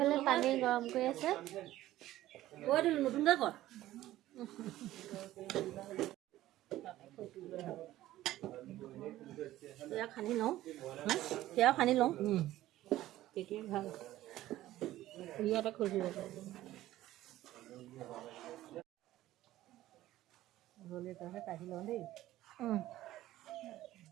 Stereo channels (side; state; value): left; quieter; 14.9 dB